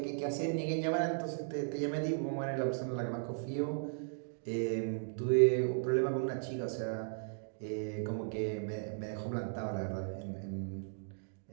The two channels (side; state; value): left; silent; digital silence